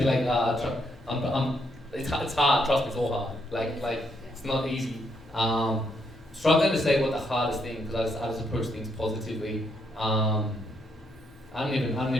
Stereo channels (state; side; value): normal; both; correlation 0.75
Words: It's hard. Trust me, it's all hard. Like it's not easy. Struggling to say what the hardest thing because I just approach things positively. I don't